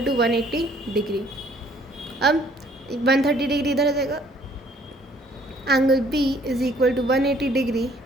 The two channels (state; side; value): normal; both; correlation 0.60